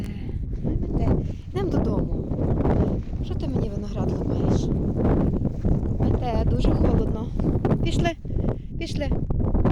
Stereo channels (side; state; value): both; identical; correlation 1.00